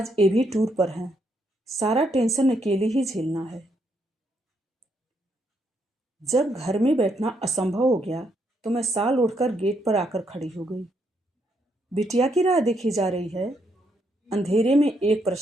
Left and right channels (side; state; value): both; normal; correlation 0.76